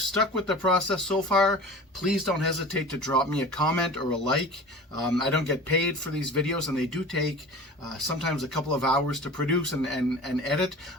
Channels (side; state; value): both; normal; correlation 0.38